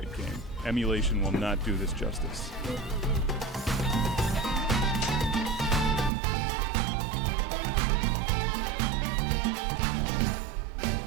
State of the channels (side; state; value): left; drops out; at 6.1 s